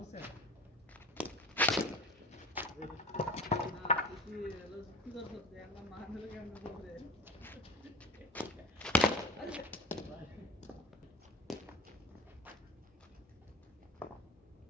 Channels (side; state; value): both; normal; correlation 0.34